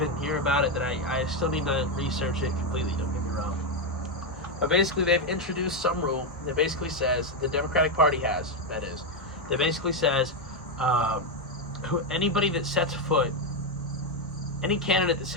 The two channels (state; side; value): normal; both; correlation 0.05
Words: hear about it that I still need to research it completely, don't get me wrong. But basically they've introduced some rule that basically says, the Democratic Party has, that is, that basically says anybody that sets foot, any candidate that